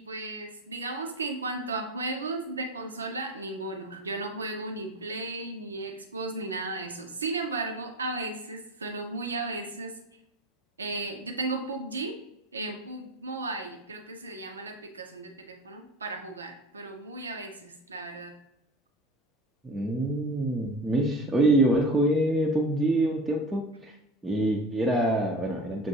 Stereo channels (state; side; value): normal; both; correlation 0.32